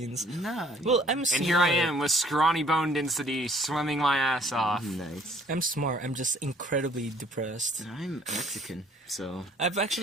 Nah. Well, I'm smart. And here I am with scrawny bone density, swimming my ass off. Nice. I'm smart. I'm just incredibly depressed. I'm Mexican, so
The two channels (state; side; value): normal; both; correlation 0.59